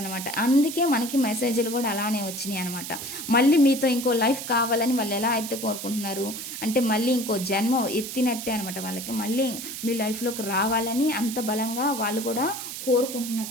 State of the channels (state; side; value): noise; right; hiss, 8 dB below the sound